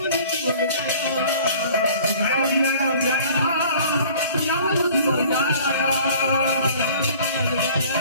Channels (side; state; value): both; inverted; correlation -0.49